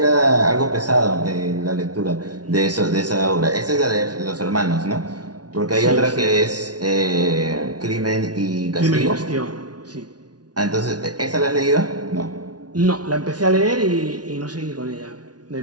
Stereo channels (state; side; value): late; left; 0.69 ms